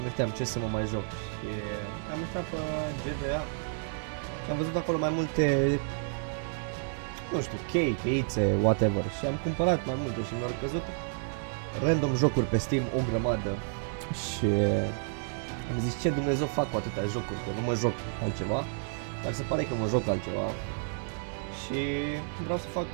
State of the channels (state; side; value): silent; left; digital silence